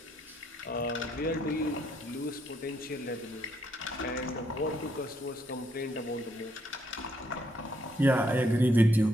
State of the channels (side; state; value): both; normal; correlation 0.73